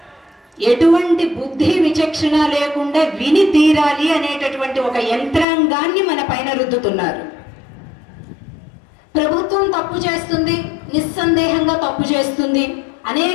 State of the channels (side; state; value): right; drops out; at 5.5 s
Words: ఎటువంటి బుద్ధి విచక్షణ లేకుండా విని తీరాలి అనేటటువంటి ఒక యంత్రాంగాన్ని మన పైన రుద్దుతున్నారు. ప్రభుత్వం తప్పు చేస్తుంది, నిస్సందేహంగా తప్పు చేస్తుంది.